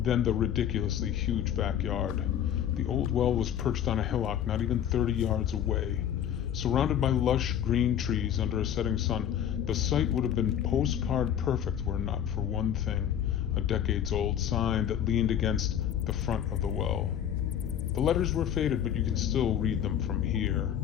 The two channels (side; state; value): right; quieter; 9.7 dB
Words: the ridiculously huge backyard. The old well was perched on a hillock not even 30 yards away. Surrounded by lush green trees under a setting sun, the site would have been postcard perfect were it not for one thing, a decades-old sign that leaned against the front of the well. The letters were faded, but you can still read them from here.